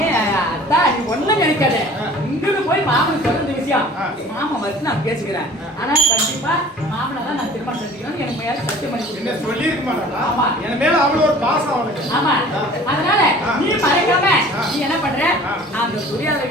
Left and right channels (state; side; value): normal; both; correlation 0.46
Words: அத்தா நீ ஒண்ணும் நினைக்காத இங்கிருந்து போய் மாமனுக்கு சொல்ற இந்த விஷயம் மாமன் வச்சு நான் பேசிக்கிறேன் ஆனா கண்டிப்பா மாமனை தான் நான் திருமணம் செஞ்சுக்கணும் எனக்கு மேல சத்தியம் பண்ணி கொடுக்கணும் சொல்லி இருக்க மாட்டா ஆமா என் மேல அவ்வளவு ஒரு பாசம் அவனுக்கு ஆமா அதனால நீ மறைக்காம நீ என்ன பண்ற அந்த துரியாத